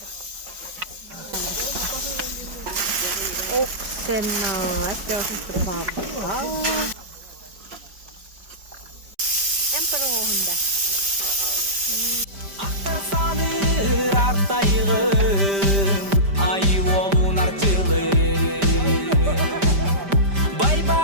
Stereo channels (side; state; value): left; late; 5.1 ms